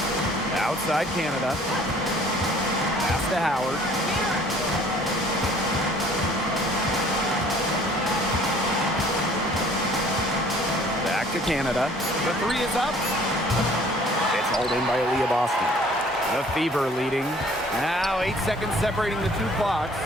Outside Canada. Pass to Howard. Back to Canada. The 3 is up. It's hauled in by Aaliyah Boston. The Fever leading. Now 8 seconds separating the 2 clocks.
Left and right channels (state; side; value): normal; both; correlation 0.54